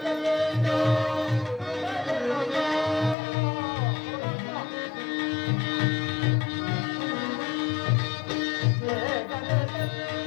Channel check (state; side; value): drops out; right; at 3.2 s